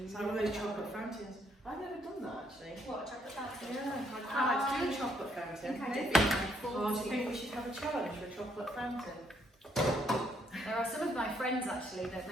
It's like one of those chocolate fountains. I've never done that actually. What, a chocolate fountain? Yeah, I'd quite like to do a chocolate fountain. I think I did. Oh, do you think we should have a challenge for a chocolate fountain? There are some of my friends actually that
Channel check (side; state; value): both; normal; correlation 0.71